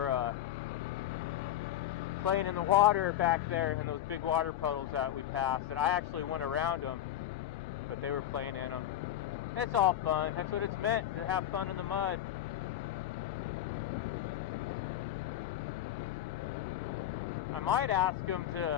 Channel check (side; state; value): right; quieter; 12.0 dB